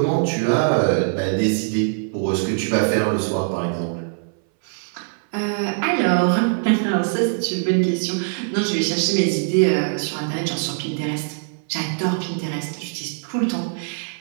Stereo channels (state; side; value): silent; left; 61 dB below the other